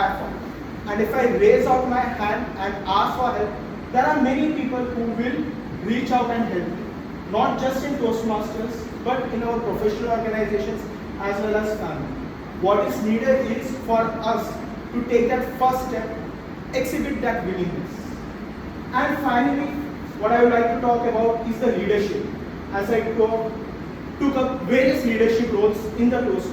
for. And if I raise out my hand and ask for help, there are many people who will reach out and help me. Not just in Toastmasters, but in our professional organizations as well as family. What is needed is for us to take that first step, exhibit that willingness. And finally, what I would like to talk about is the leadership, as I took up various leadership roles in the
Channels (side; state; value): both; identical; correlation 1.00